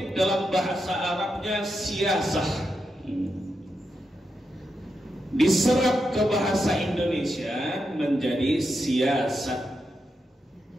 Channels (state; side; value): normal; both; correlation 0.86